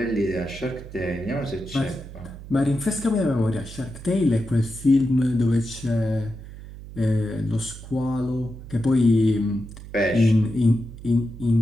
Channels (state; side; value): noise; right; hum, 14 dB below the sound